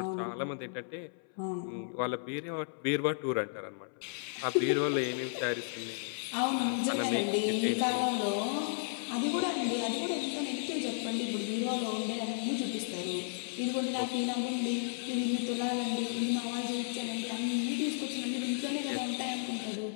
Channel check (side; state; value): right; silent; 55 dB below the other